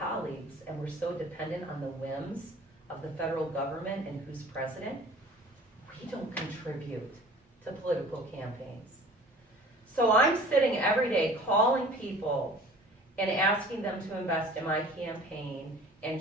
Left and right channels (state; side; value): normal; both; correlation 0.46